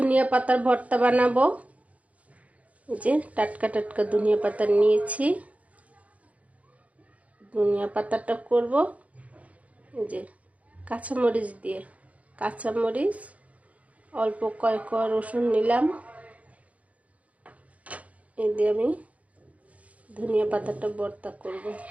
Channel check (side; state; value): left; late; 0.068 ms